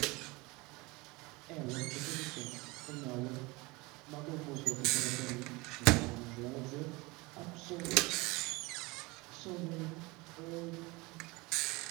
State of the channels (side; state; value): left; quieter; 24.1 dB